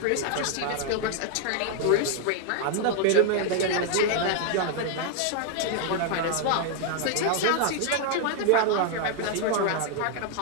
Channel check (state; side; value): different; both; correlation 0.00